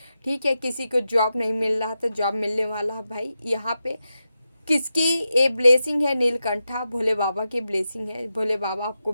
ठीक है। किसी को जॉब नहीं मिल रहा था, जॉब मिलने वाला है भाई। यहाँ पे किसकी ये ब्लेसिंग है? नीलकंठा, भोले बाबा की ब्लेसिंग है। भोले बाबा आपको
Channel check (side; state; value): both; inverted; correlation -0.89